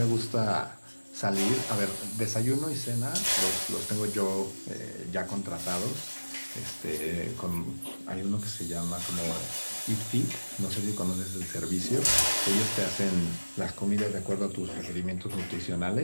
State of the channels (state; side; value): inverted; both; correlation -1.00